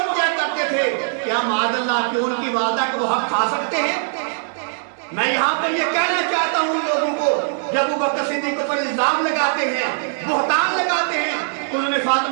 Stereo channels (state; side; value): silent; left; 60 dB below the other